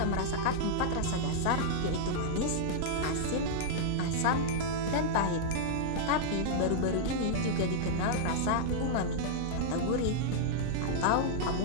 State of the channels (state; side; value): different; both; correlation -0.02